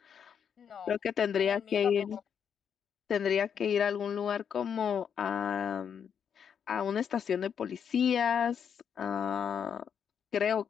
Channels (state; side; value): quieter; right; 7.7 dB